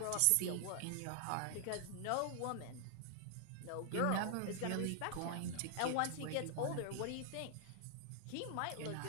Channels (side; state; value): both; different; correlation 0.00